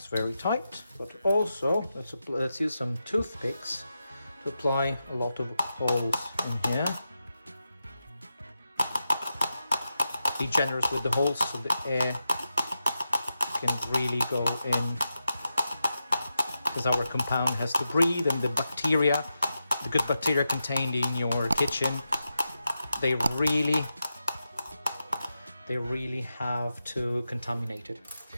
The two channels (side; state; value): both; inverted; correlation -0.89